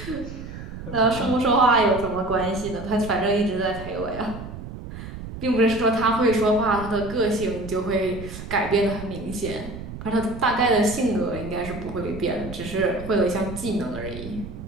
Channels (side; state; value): right; noise; rumble, 11 dB below the sound